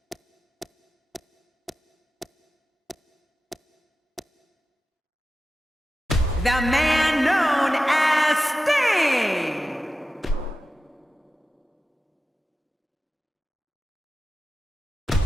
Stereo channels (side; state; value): both; normal; correlation 0.93